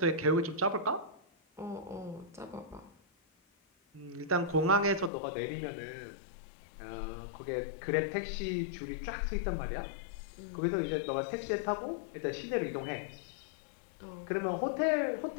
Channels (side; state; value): right; drops out; at 5.1 s